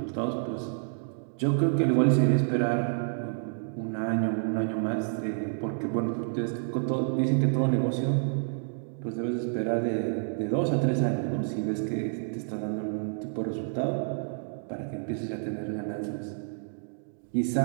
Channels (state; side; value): silent; left; digital silence